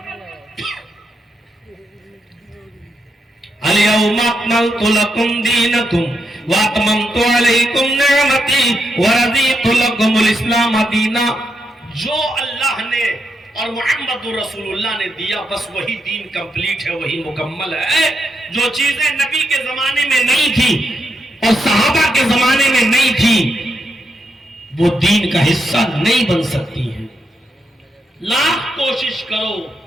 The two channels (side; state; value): both; normal; correlation 0.82